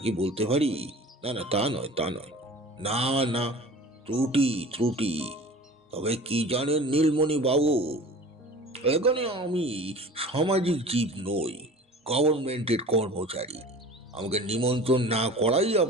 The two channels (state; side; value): normal; both; correlation 0.41